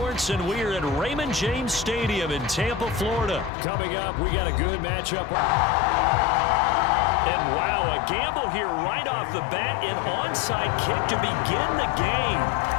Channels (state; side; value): drops out; right; at 3.5 s